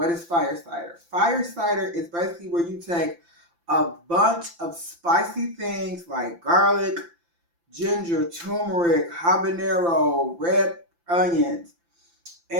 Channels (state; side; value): late; left; 5.8 ms